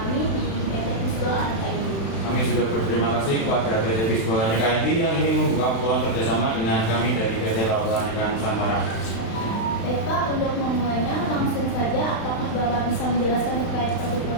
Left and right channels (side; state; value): right; late; 36 ms